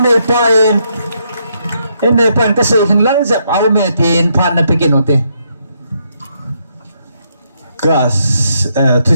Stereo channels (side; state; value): both; inverted; correlation -0.76